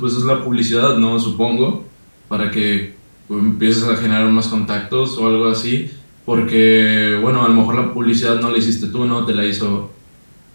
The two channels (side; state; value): both; inverted; correlation -1.00